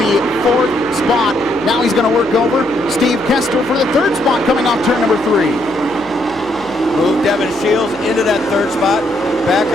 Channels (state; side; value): noise; left; hum, 24 dB below the sound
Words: 4th spot. Now he's going to work over Steve Kester for the 3rd spot coming off turn number 3. Move Devin Shields into that 3rd spot. Back